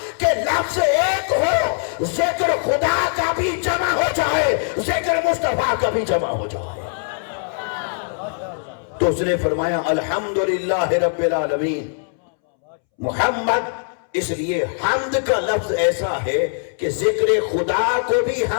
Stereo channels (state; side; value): silent; right; 65 dB below the other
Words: کہ لفظ ایک ہو، ذکر خدا کا بھی جمع ہو جائے، ذکر مصطفیٰ کا بھی جمع ہو جائے۔ تو اس نے فرمایا الحمدللہ رب العالمین محمد۔ اس لیے حمد کا لفظ ایسا ہے کہ ذکر خدا کو بھی